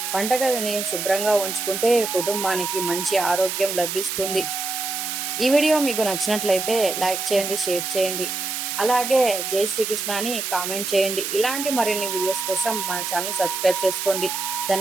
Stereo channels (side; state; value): right; noise; hiss, 3 dB below the sound